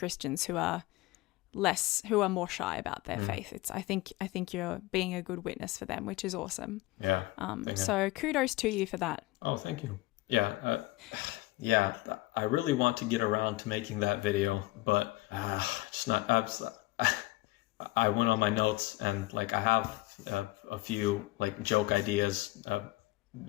who are more shy about their faith. I think you're being a good witness for them, which is awesome. Yeah. So kudos to you for that. Oh, thank you. Yeah. Yeah. I really want to get around to making that video, but just not. I went on my notes, and like I have a few like joke ideas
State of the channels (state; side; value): quieter; right; 19.9 dB